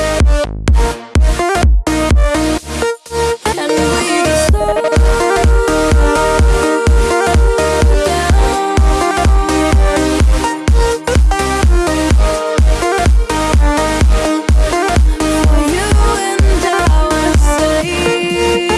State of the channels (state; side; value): identical; both; correlation 1.00